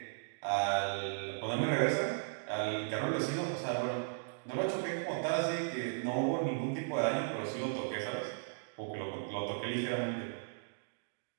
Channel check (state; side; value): silent; left; digital silence